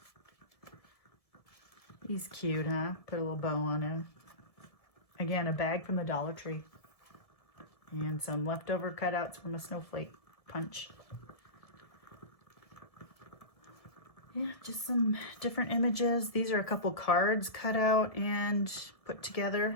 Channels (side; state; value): right; late; 1.6 ms